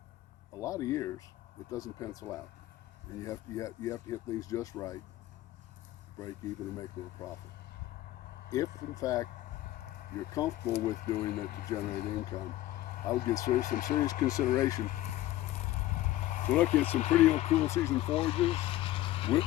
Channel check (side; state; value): right; quieter; 15.3 dB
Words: a lot of years it doesn't pencil out, and you have to hit things just right, break even, and make a little profit. If in fact you're comfortable with doing that to generate income, I would give some serious consideration to look at some pretty cool season forages.